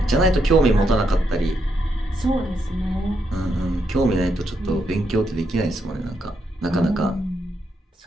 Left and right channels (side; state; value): both; normal; correlation 0.80